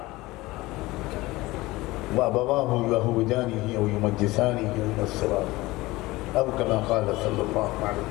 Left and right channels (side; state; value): right; quieter; 19.9 dB